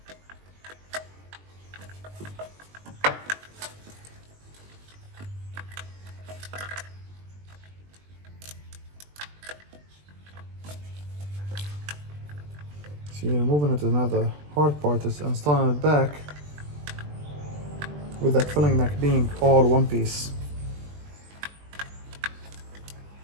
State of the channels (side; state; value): left; late; 20 ms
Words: See, removing it is not the hard part, is installing it back with that filling neck being all one piece.